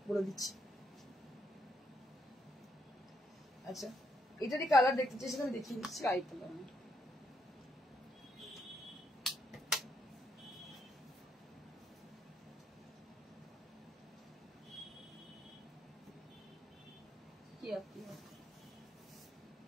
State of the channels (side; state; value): both; normal; correlation 0.76